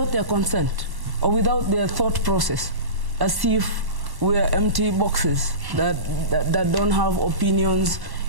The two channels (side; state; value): left; late; 1.1 ms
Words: their consent or without their thought process, as if we're empty boxes that don't have opinions.